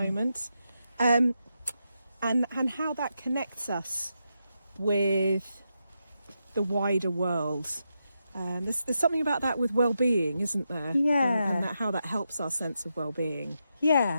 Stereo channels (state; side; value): inverted; both; correlation -0.86